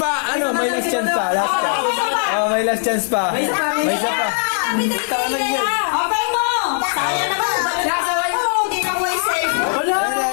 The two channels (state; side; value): silent; right; 67 dB below the other